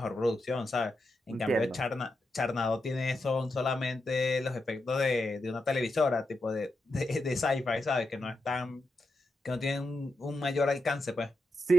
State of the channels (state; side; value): normal; both; correlation 0.86